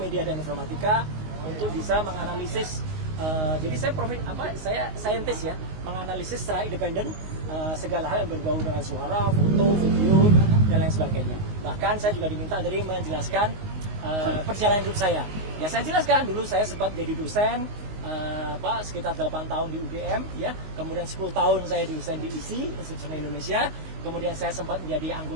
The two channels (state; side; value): late; left; 19 ms